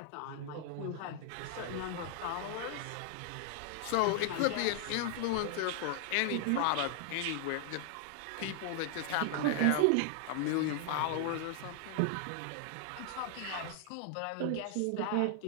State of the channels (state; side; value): different; both; correlation 0.00